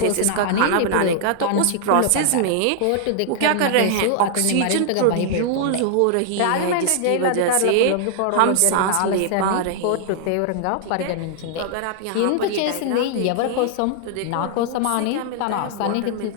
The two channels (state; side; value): different; both; correlation -0.01